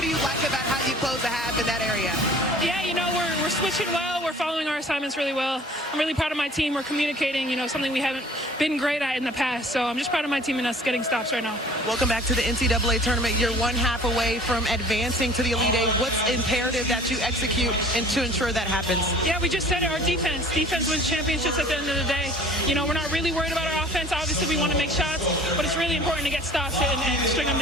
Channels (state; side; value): normal; both; correlation 0.49